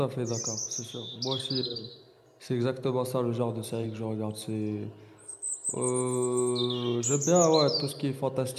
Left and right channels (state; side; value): identical; both; correlation 1.00